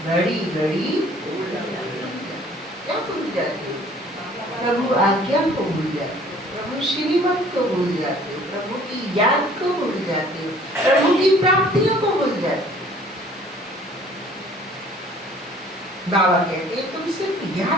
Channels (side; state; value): both; normal; correlation 0.54